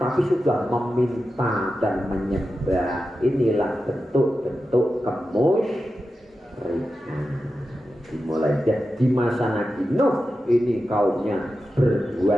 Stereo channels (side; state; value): both; normal; correlation 0.91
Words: sudah meminta dan menyembah. Inilah bentuk-bentuk kemusyrikan. Dimulai di masa Nabi Nuh ini kaumnya